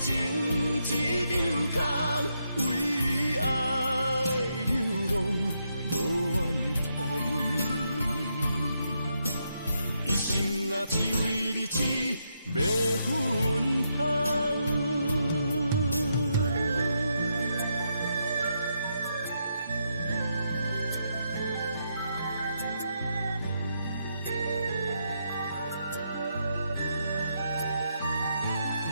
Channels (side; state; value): both; inverted; correlation -0.80